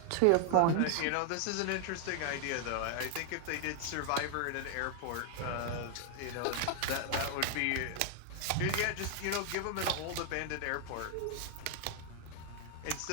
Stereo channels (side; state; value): both; different; correlation 0.00